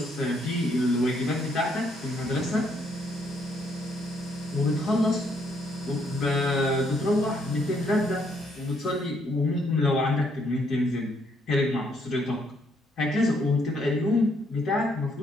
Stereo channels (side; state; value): both; normal; correlation 0.71